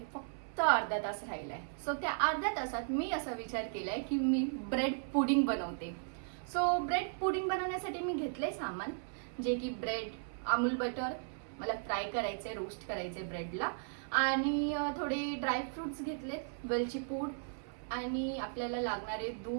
फक्त अर्धा तास राहिलाय. सो त्या अर्ध्या तासात मी असा विचार केलाय की मी ब्रेड पुडिंग बनवते. सो ब्रेड पुडिंग बनवण्यासाठी मी घेतले सामान, जे की ब्रेड, अमूल बटर, मला फ्राय करायचे, रोस्ट करायचे ब्रेडला, आणि थोडे ड्रायफ्रुट्स घेतलेत, वेलची पूड आणि आपल्याला लागणारे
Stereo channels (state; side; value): silent; left; 54 dB below the other